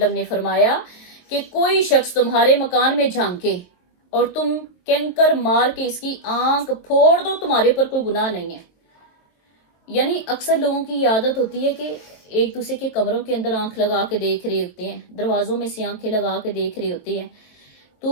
نے فرمایا کہ کوئی شخص تمہارے مکان میں جھانکے اور تم کینکر مار کے اس کی آنکھ پھوڑ دو، تمہارے پر کوئی گناہ نہیں ہے۔ یعنی اکثر لوگوں کی عادت ہوتی ہے کہ ایک دوسرے کے کمروں کے اندر آنکھ لگا کے دیکھ رہے ہوتے ہیں، دروازوں میں سے آنکھیں لگا کے دیکھ رہے ہوتے ہیں،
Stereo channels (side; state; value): right; late; 22 ms